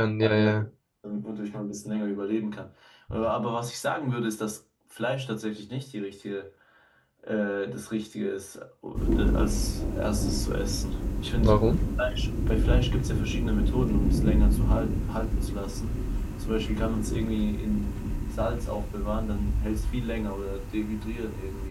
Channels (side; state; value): both; identical; correlation 1.00